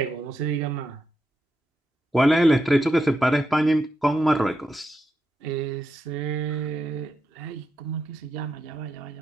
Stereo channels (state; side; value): normal; both; correlation 0.84